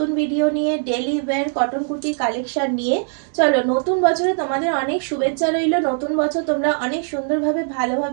ভিডিও নিয়ে, daily wear cotton kurti collection নিয়ে। চলো, নতুন বছরে তোমাদের অনেক শুভেচ্ছা রইল। নতুন বছর তোমরা অনেক সুন্দরভাবে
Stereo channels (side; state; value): left; silent; 57 dB below the other